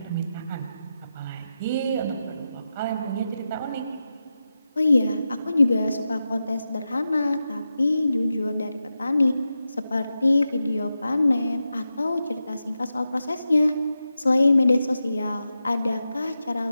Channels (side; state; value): both; inverted; correlation -0.91